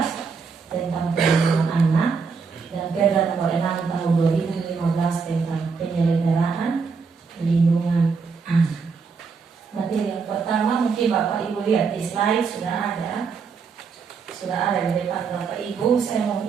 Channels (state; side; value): quieter; left; 5.3 dB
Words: tentang perlindungan anak, dan Perda nomor 6 tahun 2015 tentang penyelenggaraan perlindungan anak. Materi yang pertama mungkin Bapak Ibu lihat di slide sudah ada di depan Bapak Ibu. Saya mau